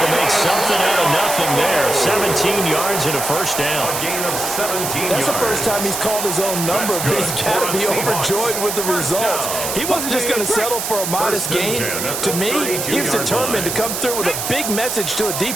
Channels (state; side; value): noise; right; hiss, 3 dB below the sound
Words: to make something out of nothing there. 17 yards and a 1st down. That's the first time he's called his own number, but he's got to be overjoyed with the results. He wasn't just going to settle for a modest gain. To me, he was determined to come through with a big message to a